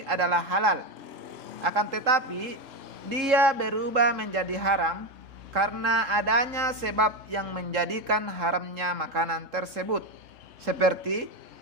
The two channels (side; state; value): left; late; 3.7 ms